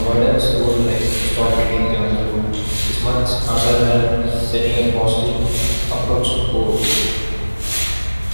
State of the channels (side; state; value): both; inverted; correlation -1.00